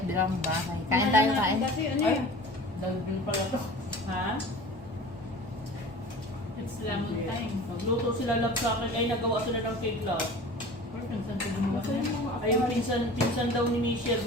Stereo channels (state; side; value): noise; right; hum, 23 dB below the sound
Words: bahay. Kain tayo, kain. Kasi ano Ay, yun? dagdag pala to. Ha? It's lemon time. Magluto sila love sa akin. Ay, nagawa sila ng cake love. Or minsan ko gumawa na yun. Ay, yung pinsan daw ni Michelle